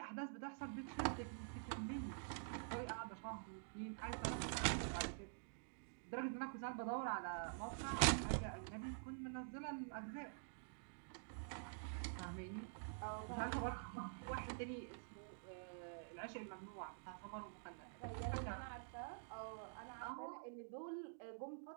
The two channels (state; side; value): silent; left; digital silence